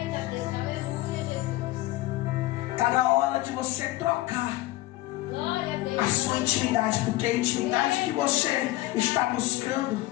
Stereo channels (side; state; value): right; quieter; 17.9 dB